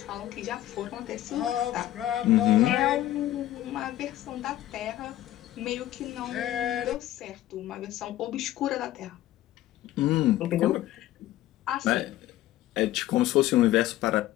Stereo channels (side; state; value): right; quieter; 14.1 dB